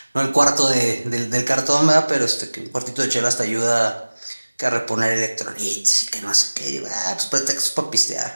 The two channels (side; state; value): both; inverted; correlation -1.00